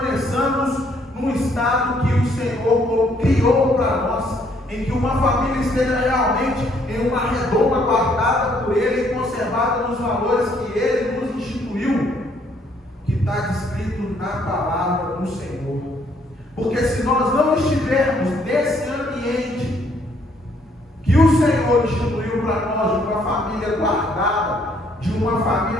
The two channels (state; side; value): normal; both; correlation 0.67